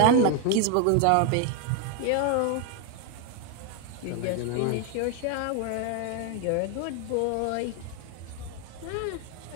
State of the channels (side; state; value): both; different; correlation 0.01